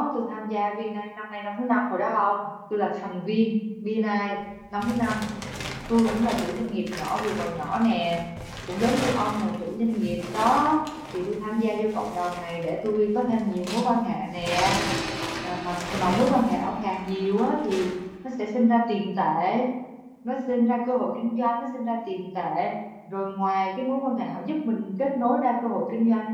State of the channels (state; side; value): identical; both; correlation 1.00